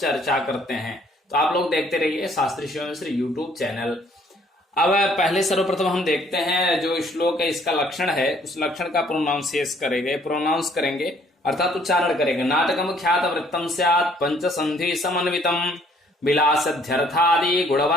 करते हैं। तो आप लोग देखते रहिए शास्त्री शिव मिश्र यूट्यूब चैनल। अब पहले सर्वप्रथम हम देखते हैं जो श्लोक है, इसका लक्षण है, उस लक्षण का प्रोनाउंस करेंगे अर्थात उच्चारण करेंगे। नाटकम ख्यात वृत्तम स्यात् पंचसंधि समन्वितम विलासध्यर्थादि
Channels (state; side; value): normal; both; correlation 0.62